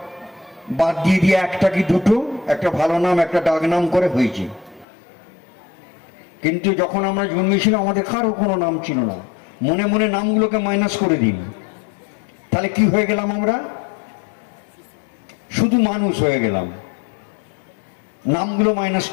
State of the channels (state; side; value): drops out; right; at 4.9 s